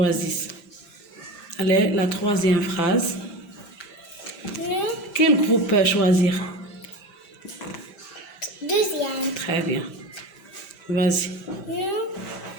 Allez, la troisième phrase. Quel groupe peut choisir? Deuxième. Très bien. Vas-y. Nous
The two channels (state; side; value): late; right; 5.1 ms